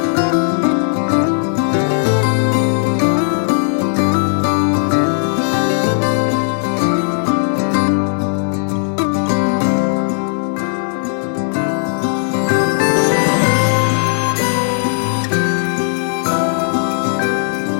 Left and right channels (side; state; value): right; silent; digital silence